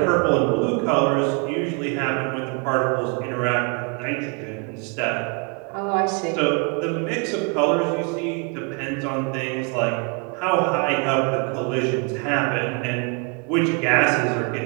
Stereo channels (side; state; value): left; quieter; 35.1 dB